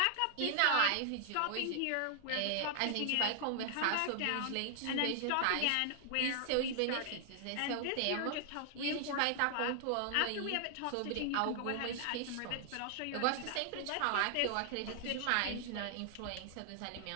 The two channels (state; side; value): different; both; correlation -0.01